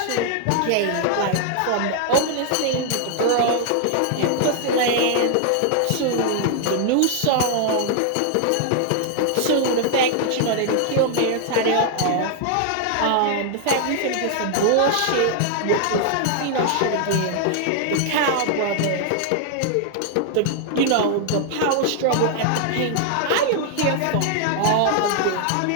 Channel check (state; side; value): different; both; correlation 0.00